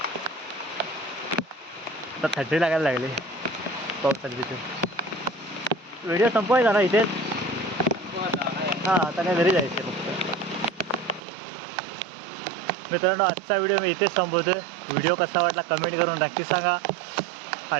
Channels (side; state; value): left; drops out; at 11.2 s